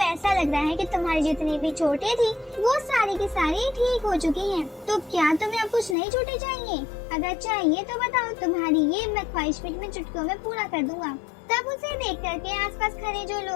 ऐसा लग रहा है कि तुम्हारी जितनी भी चोटें थी वो सारी की सारी ठीक हो चुकी हैं। तो क्या तुम्हें अब कुछ नई चोटें चाहिए? अगर चाहिए तो बताओ, तुम्हारी ये मैं ख्वाहिश में चुटकियों में पूरा कर दूंगा। तब उसे देख करके आसपास खड़े जो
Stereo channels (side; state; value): right; drops out; at 6.0 s